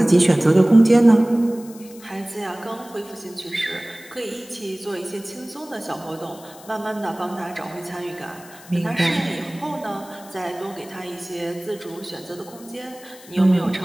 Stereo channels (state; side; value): noise; left; hiss, 21 dB below the sound